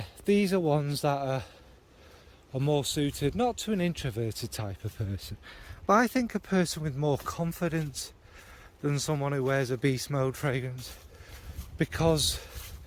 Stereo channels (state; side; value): identical; both; correlation 1.00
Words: these are ones that are more suited not to an introverted type of person, but I think a person with more confidence than someone who wears a Beast Mode fragrance, because